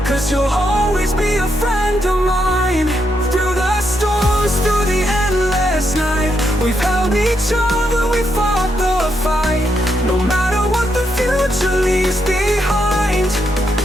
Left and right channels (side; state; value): both; normal; correlation 0.80